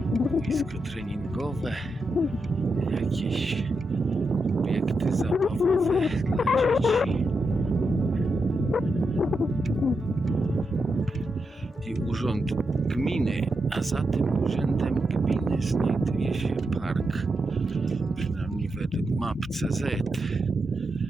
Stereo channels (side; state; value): both; normal; correlation 0.85